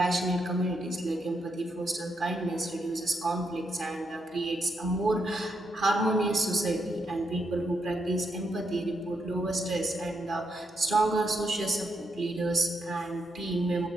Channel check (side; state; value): both; normal; correlation 0.80